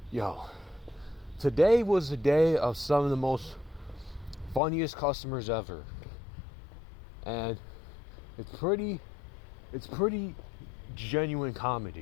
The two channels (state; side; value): drops out; right; at 4.6 s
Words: Yo, today was a day of some of the most funniest customers ever. And it's pretty genuine